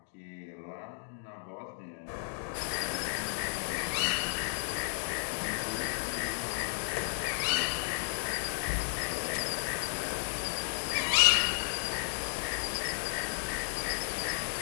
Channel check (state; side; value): silent; right; digital silence